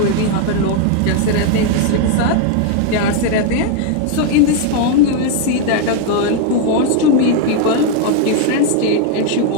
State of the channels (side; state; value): both; different; correlation 0.00